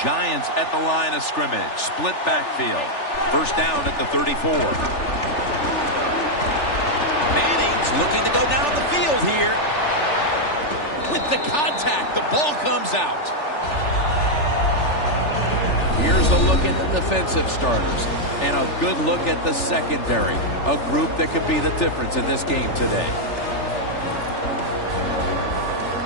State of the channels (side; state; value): right; late; 3.4 ms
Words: Giants at the line of scrimmage. Split backfield. First down at the 34. Manning's looking to go down the field here. With the contact, the ball comes out. Here's a look at the defensive starters. And a good look at the secondary. A group that could be the difference in this game today.